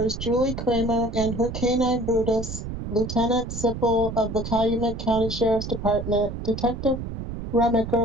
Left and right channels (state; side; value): noise; right; rumble, 7 dB below the sound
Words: Julie Kramer and her canine Brutus, Lieutenant Sipple of the Calumet County Sheriff's Department, Detective